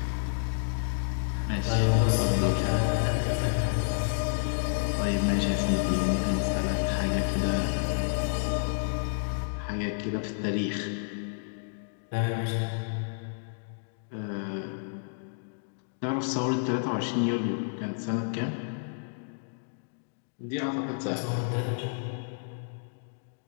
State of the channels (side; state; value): right; silent; digital silence